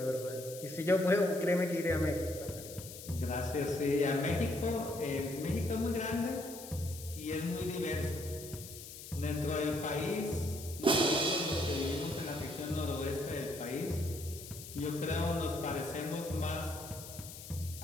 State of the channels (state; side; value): noise; left; hiss, 13 dB below the sound